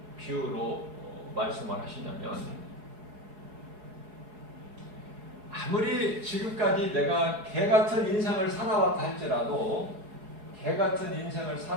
비유로 말씀을 하시냐면, 아무리 지금까지 내가 개 같은 인생을 살아왔다 할지라도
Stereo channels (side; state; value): left; late; 4.7 ms